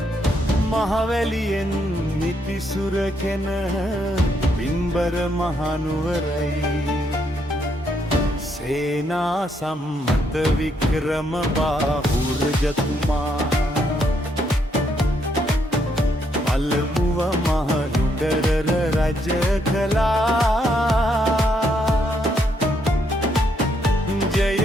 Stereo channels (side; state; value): both; normal; correlation 0.74